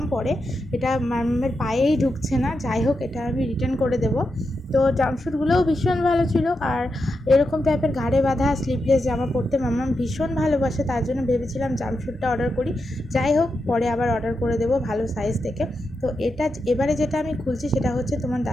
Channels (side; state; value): both; normal; correlation 0.87